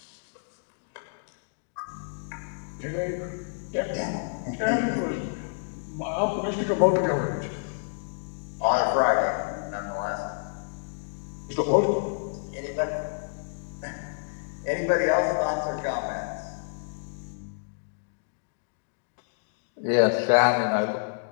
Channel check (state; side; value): silent; right; digital silence